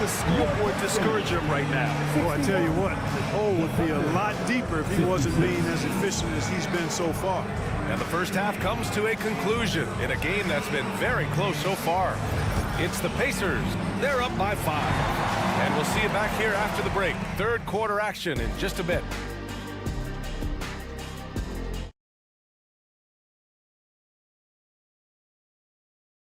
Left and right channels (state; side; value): identical; both; correlation 1.00